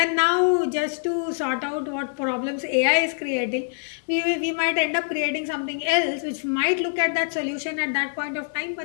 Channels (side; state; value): right; silent; 62 dB below the other